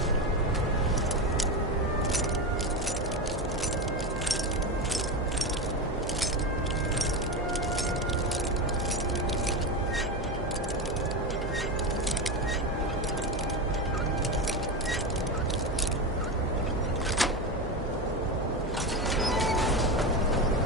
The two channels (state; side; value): normal; both; correlation 0.17